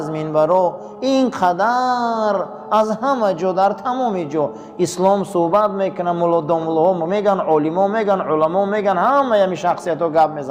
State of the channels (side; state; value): both; identical; correlation 1.00